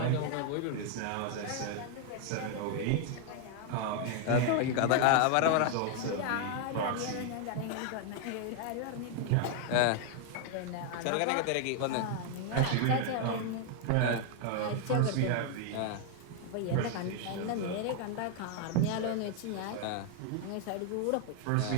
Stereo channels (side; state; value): both; different; correlation 0.00